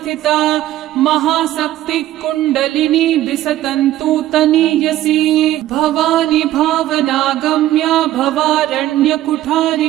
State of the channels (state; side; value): quieter; left; 14.1 dB